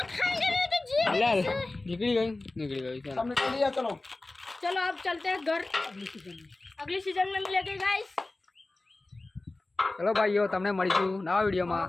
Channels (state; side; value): quieter; right; 3.0 dB